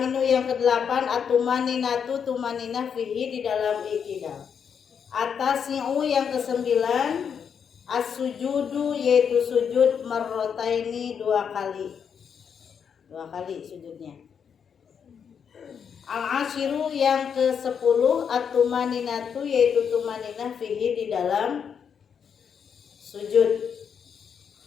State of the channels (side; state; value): right; quieter; 7.2 dB